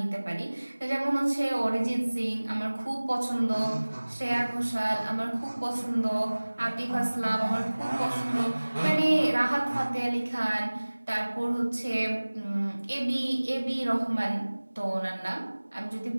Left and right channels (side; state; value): both; inverted; correlation -1.00